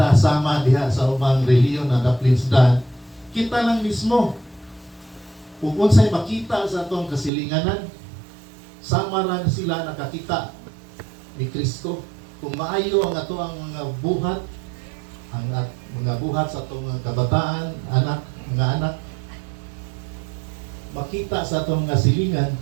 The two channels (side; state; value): left; drops out; at 7.3 s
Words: sama diha sa ubang reliyon na naplinsdan. Kita lang mismo kung unsay makita sa atong kasilinganan, sama ran sila nakakita ni Kristo. Kung maayo ang ato ang mga buhat, ang mga buhat sa atong mga kabataan, mga anak, makita sa atong mga silingan,